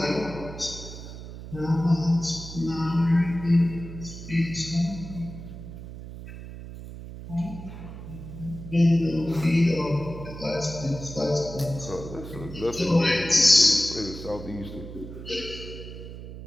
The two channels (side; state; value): right; noise; hum, 12 dB below the sound